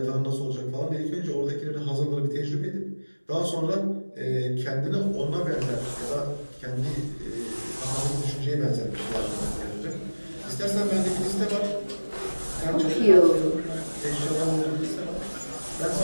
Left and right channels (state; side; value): inverted; both; correlation -1.00